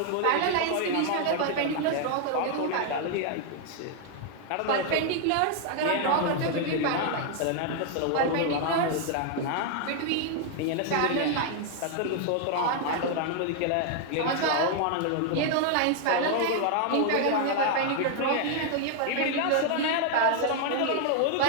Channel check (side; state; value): both; different; correlation 0.00